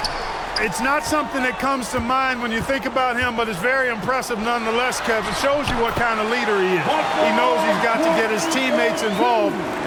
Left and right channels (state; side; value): identical; both; correlation 1.00